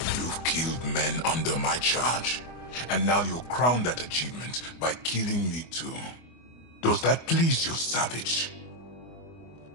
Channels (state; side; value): late; right; 24 ms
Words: Men under my charge. And now you'll crown that achievement by killing me too. Does that please you, savage?